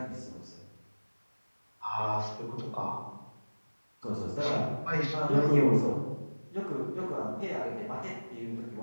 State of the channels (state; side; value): inverted; both; correlation -1.00